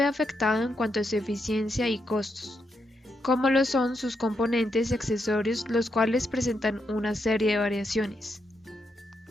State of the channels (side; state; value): both; normal; correlation 0.81